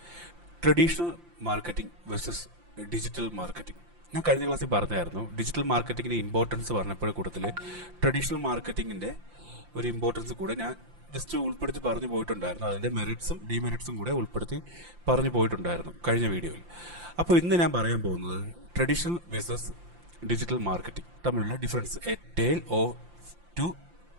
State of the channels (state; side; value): late; left; 5.8 ms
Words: traditional marketing versus digital marketing. ഞാൻ കഴിഞ്ഞ ക്ലാസ്സിൽ പറഞ്ഞായിരുന്നു ഡിജിറ്റൽ മാർക്കറ്റിങ്ങിൻ്റെ ഇമ്പോർട്ടൻസ് പറഞ്ഞപ്പോൾ കൂട്ടത്തിൽ ട്രഡീഷണൽ മാർക്കറ്റിങ്ങിൻ്റെ ഒരു ഇമ്പോർട്ടൻസ് കൂടെ ഞാൻ ജസ്റ്റ് ഉൾപ്പെടുത്തി പറഞ്ഞു പോയിട്ടുണ്ടായിരുന്നു. അതിൻ്റെ മെറിറ്റ്സും ഡിമെറിറ്റ്സും കൂടെ ഉൾപ്പെടുത്തി പറഞ്ഞു പോയിട്ടുണ്ടായിരുന്നു കഴിഞ്ഞ വീഡിയോയിൽ. അപ്പോൾ ഇന്ന് ഞാൻ പറയാൻ പോകുന്നത് ട്രഡീഷണൽ വേഴ്സസ് ഡിജിറ്റൽ മാർക്കറ്റിംഗ് തമ്മിലുള്ള difference, A tale of to